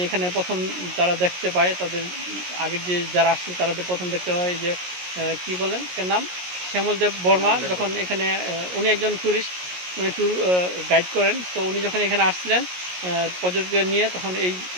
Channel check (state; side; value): late; left; 17 ms